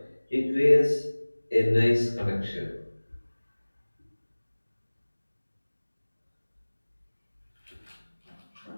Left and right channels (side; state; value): both; inverted; correlation -1.00